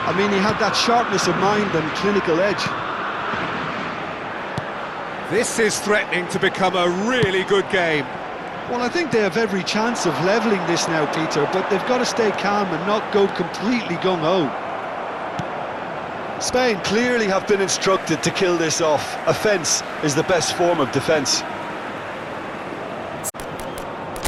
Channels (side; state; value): both; identical; correlation 1.00